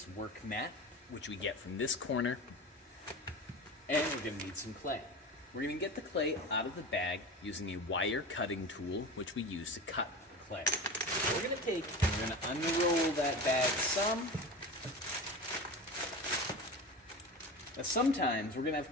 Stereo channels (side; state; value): both; normal; correlation 0.30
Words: work mat, which we get from this corner, and we're going to need some clay. We're going to get the clay out of the bag using a wire cutting tool, which we use to cut clay. So we're going to take and we're going to unroll that bag some. Now sometimes we're going to have